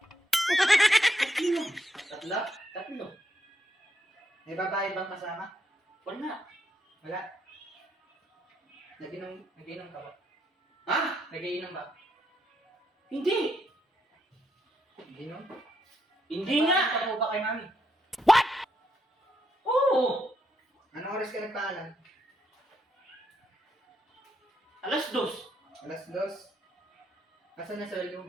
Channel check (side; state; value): both; normal; correlation 0.78